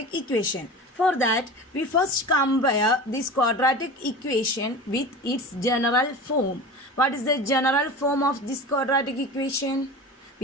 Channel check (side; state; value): both; normal; correlation 0.32